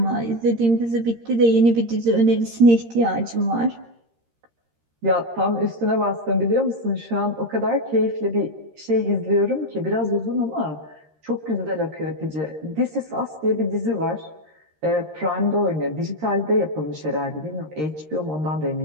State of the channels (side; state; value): left; late; 13 ms